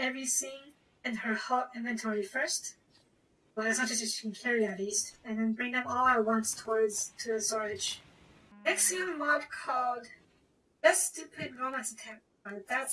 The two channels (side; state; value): both; identical; correlation 1.00